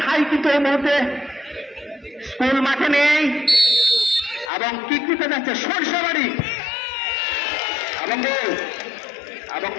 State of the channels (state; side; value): drops out; right; at 4.5 s